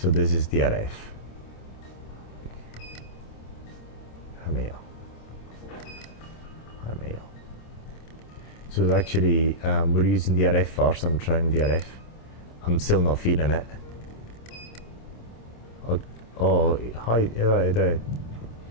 this is DRF. 还没有。还没有。So actually, we're using DRF first. I'm trying DRF. I'm still not feeling it. Oh, hi, 对，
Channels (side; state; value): right; late; 26 ms